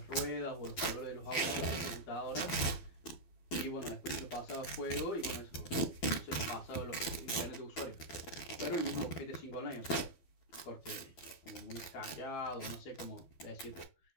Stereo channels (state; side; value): late; right; 12 ms